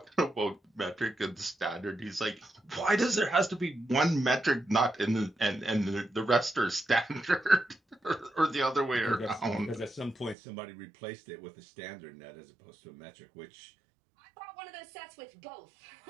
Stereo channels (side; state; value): left; drops out; at 10.4 s